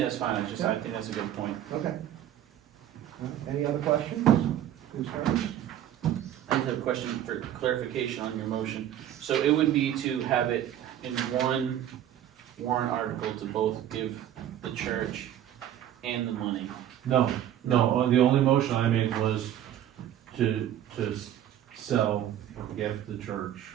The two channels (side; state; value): left; quieter; 11.3 dB